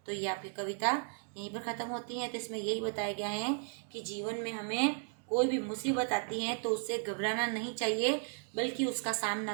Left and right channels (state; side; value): silent; left; 54 dB below the other